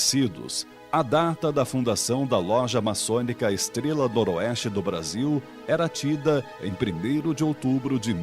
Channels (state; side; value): identical; both; correlation 1.00